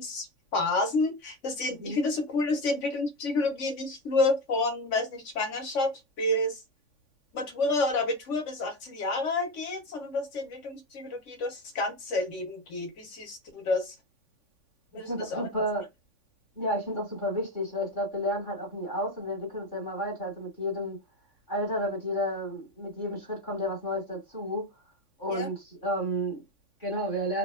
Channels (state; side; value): late; right; 3.5 ms